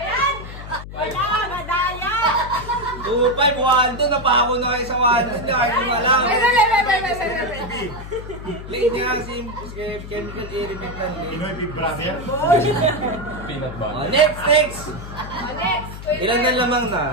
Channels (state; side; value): noise; left; hum, 11 dB below the sound